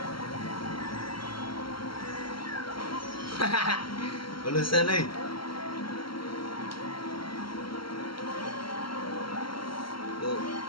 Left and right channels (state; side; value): late; right; 0.74 ms